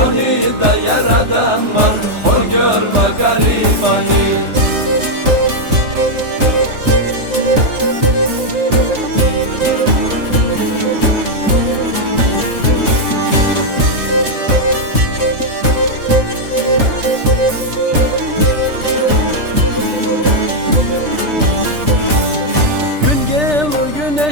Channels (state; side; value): late; left; 3.4 ms